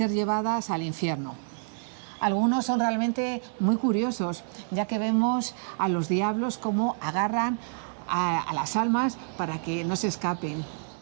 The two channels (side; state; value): left; silent; 59 dB below the other